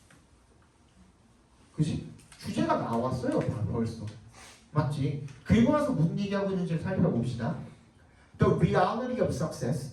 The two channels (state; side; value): identical; both; correlation 1.00